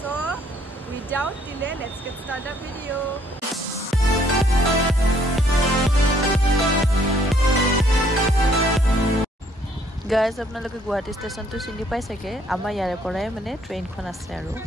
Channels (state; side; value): normal; both; correlation 0.65